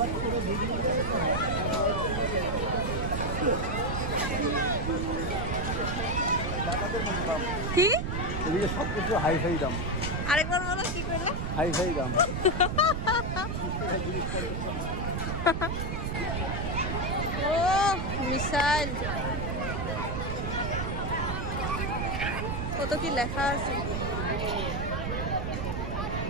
করে ভিডিও কি এদিকে সব কিছু হাই ফাই দাম আরেকবার বলো কি করলে হাই ফাই দাম ও মিসাইল কত কি লেখা আছে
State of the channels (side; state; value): right; noise; rumble, 2 dB below the sound